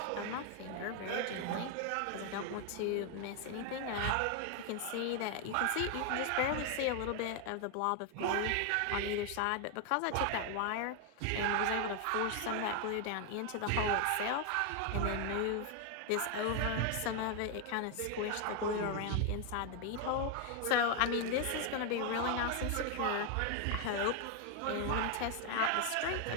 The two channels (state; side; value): different; both; correlation 0.01